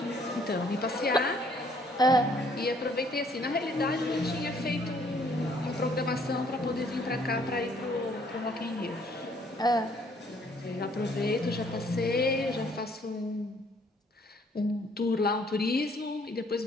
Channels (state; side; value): normal; both; correlation 0.63